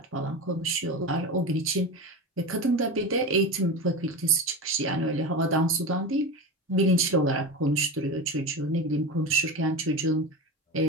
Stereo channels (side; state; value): both; normal; correlation 0.24